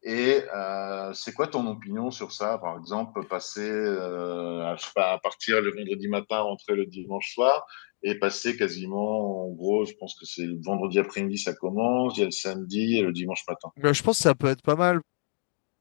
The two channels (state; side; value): silent; right; 55 dB below the other